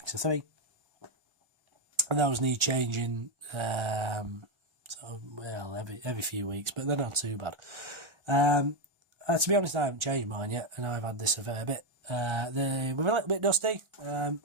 of 3. And those need changing every few weeks, but they're not too bad. To be honest, I haven't changed mine yet, and I've had this a fair bit. They were a little bit dusty,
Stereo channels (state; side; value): late; left; 1.4 ms